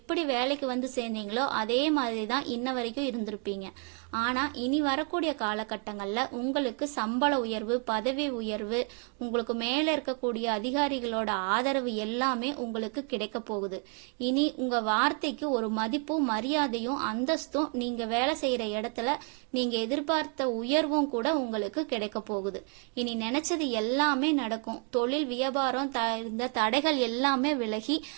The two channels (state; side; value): quieter; left; 39.8 dB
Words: வேலைக்கு வந்து சேர்ந்தீங்களோ அதே மாதிரிதான் இன்ன வரைக்கும் இருந்திருப்பீங்க. ஆனா இனி வரக்கூடிய காலகட்டங்கள்ல உங்களுக்கு சம்பள உயர்வு, பதவி உயர்வு, உங்களுக்கு மேல இருக்கக்கூடிய அதிகாரிகளோட ஆதரவு எல்லாமே உங்களுக்கு கிடைக்க போகுது. இனி உங்க வார்த்தைக்கு ஒரு மதிப்பும் மரியாதையும் அந்தஸ்தும், நீங்க வேலை செய்யற இடத்துல நீங்க எதிர்பார்த்த உயர்வும் கூட உங்களுக்கு கிடைக்க போகுது. இனி நினைச்சது எல்லாமே நடக்கும். தொழில் வியாபாரம் இந்த தடைகள் எல்லாமே விலகி